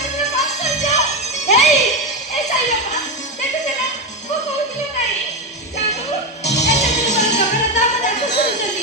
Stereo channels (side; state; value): both; normal; correlation 0.13